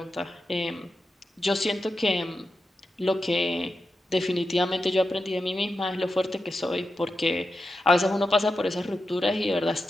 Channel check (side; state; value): both; normal; correlation 0.90